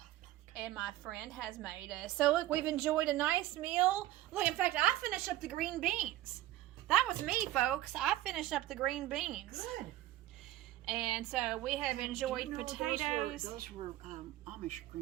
And my friend has made us. So look, we've enjoyed a nice meal. Look, in fact, I finished up the green beans. That was me, folks. I finished up the green beans. Good. And so we have enjoyed Do you know potatoes. Those were Amish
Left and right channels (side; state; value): left; quieter; 15.0 dB